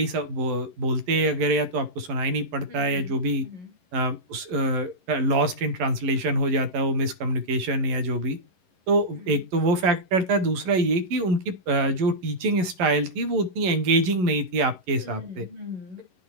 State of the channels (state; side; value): late; left; 11 ms